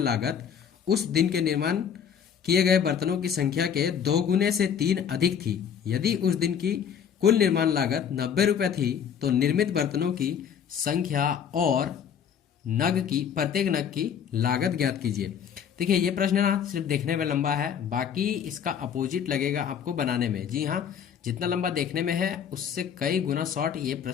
लागत उस दिन के निर्माण किए गए बर्तनों की संख्या के 2 गुने से 3 अधिक थी। यदि उस दिन की कुल निर्माण लागत 90 रुपये थी तो निर्मित बर्तनों की संख्या और प्रत्येक नग की लागत ज्ञात कीजिए। देखिए, ये प्रश्न ना सिर्फ देखने में लंबा है, बाकी इसका अपोजिट लगेगा आपको बनाने में। जी हाँ, जितना लंबा देखने में है उससे कई गुना शॉर्ट ये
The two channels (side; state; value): right; quieter; 8.0 dB